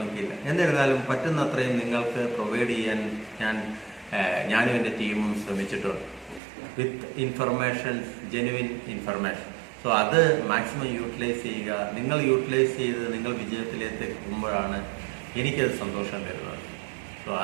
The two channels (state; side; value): drops out; left; at 6.4 s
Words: എന്നിരുന്നാലും പറ്റുന്നത്രയും നിങ്ങൾക്ക് പ്രൊവൈഡ് ചെയ്യാൻ ഞാനും എൻ്റെ ടീമും ശ്രമിച്ചിട്ടുണ്ട് വിത്ത് ഇൻഫർമേഷൻസ്, ജെനുവിൻ ഇൻഫർമേഷൻ. സോ അത് മാക്സിമം യൂട്ടിലൈസ് ചെയ്യുക. നിങ്ങൾ യൂട്ടിലൈസ് ചെയ്ത് നിങ്ങൾ വിജയത്തിലേക്ക് എത്തുമ്പോഴാണ് എനിക്കത് സന്തോഷം തരുന്നത്. സോ